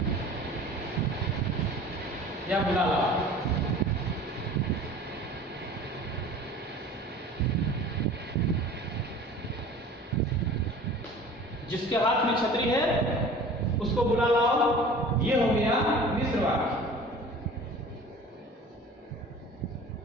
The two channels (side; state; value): both; normal; correlation 0.43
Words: या बुला लाओ। जिसके हाथ में छतरी है उसको बुला लाओ, ये हो गया मिश्र वाक्य।